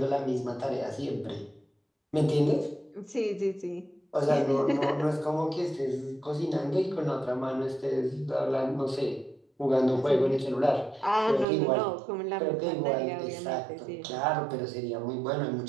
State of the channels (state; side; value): drops out; left; at 11.5 s